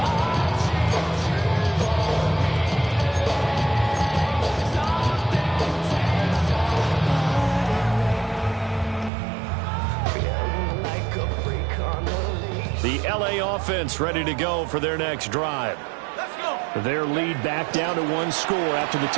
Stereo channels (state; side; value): drops out; left; at 9.1 s